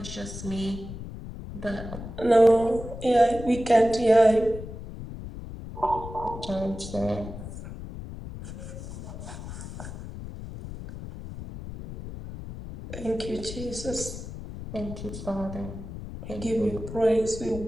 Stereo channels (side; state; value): left; noise; rumble, 10 dB below the sound